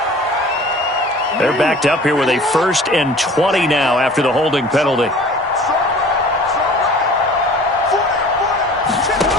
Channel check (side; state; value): both; normal; correlation 0.45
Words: They're backed up here with a 1st and 20 now after the holding penalty.